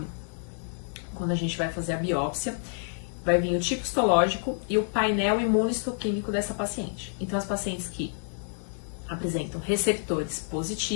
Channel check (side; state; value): right; silent; digital silence